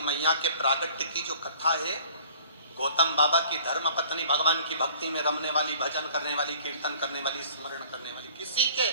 मैया के प्रागट्य की जो कथा है, गौतम बाबा की धर्म पत्नी भगवान की भक्ति में रमने वाली, भजन करने वाली, कीर्तन करने वाली, स्मरण करने वाली, किसी के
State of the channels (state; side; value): inverted; both; correlation -0.53